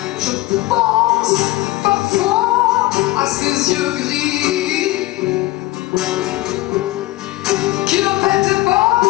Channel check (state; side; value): quieter; right; 18.8 dB